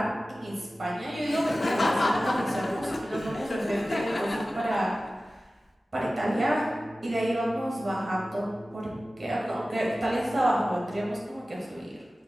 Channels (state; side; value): normal; both; correlation 0.96